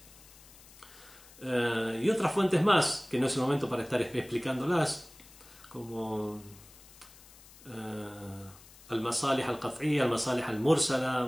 y otras fuentes más, que no es el momento para estar explicándolas, como al-masalih al-qat'iyya, al-masalih al-mursala,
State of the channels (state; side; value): noise; left; hiss, 22 dB below the sound